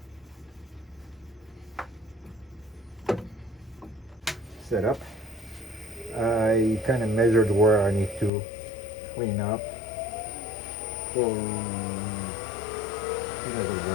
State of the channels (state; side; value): drops out; right; at 8.3 s